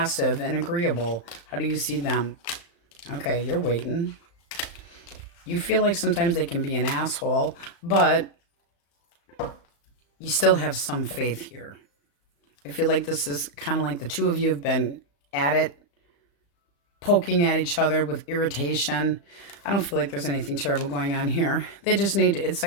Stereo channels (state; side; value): late; right; 35 ms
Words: and agreeable. How do you see them? Okay, you're waiting. You feel like sometimes they can be an asshole, but you still have some faith here. I feel like this is kind of like the two of you have been at it, poking at each other with irritation. I don't feel like there's anything terrible going on here. They just need to, it's